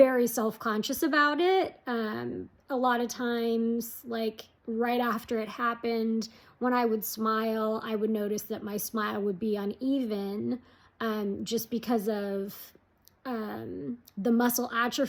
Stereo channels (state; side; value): identical; both; correlation 1.00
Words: self-conscious about it. A lot of times, like right after it happened, when I would smile, I would notice that my smile would be uneven, just because of the muscle